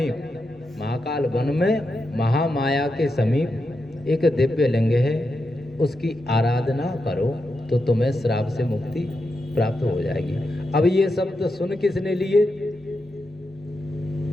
महाकाल वन में महामाया के समीप एक दिव्य लिंग है, उसकी आराधना करो तो तुम्हें श्राप से मुक्ति प्राप्त हो जाएगी। अब ये शब्द सुन किसने लिए?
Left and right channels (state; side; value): normal; both; correlation 0.87